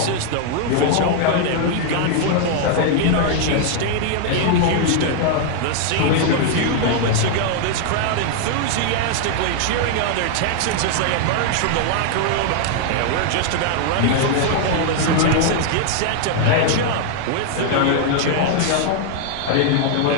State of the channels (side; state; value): both; different; correlation 0.00